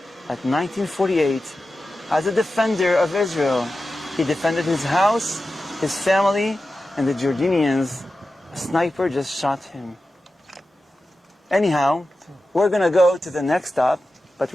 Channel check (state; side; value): normal; both; correlation 0.93